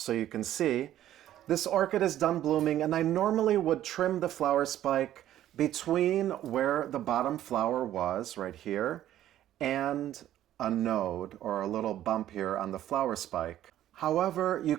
you can see. This orchid is done blooming, and I normally would trim the flower spike between where the bottom flower was, right here, and a node or a little bump here on the flower spike. However, you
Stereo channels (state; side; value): quieter; left; 12.5 dB